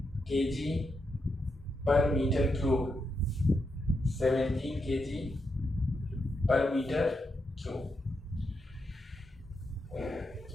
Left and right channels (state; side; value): normal; both; correlation 0.84